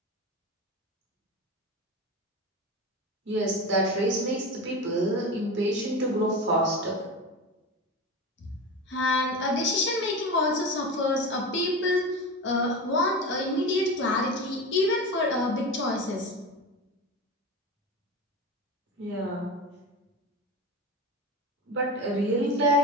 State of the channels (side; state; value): both; normal; correlation 0.26